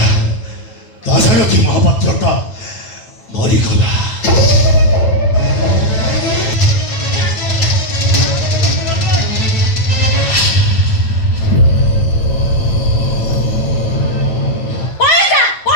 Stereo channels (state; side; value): late; right; 8.9 ms